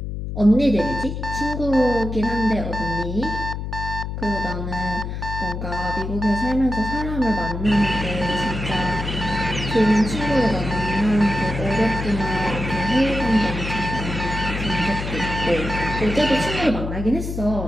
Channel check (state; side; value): noise; left; hum, 5 dB below the sound